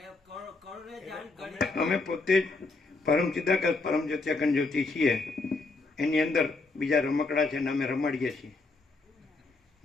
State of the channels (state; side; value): quieter; right; 3.6 dB